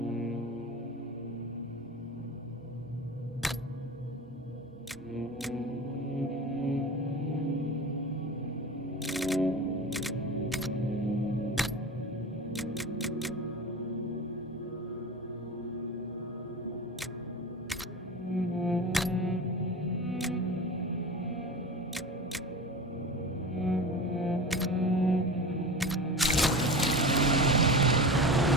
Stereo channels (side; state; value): both; normal; correlation 0.30